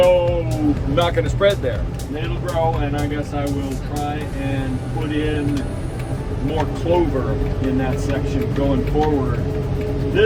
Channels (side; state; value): both; identical; correlation 1.00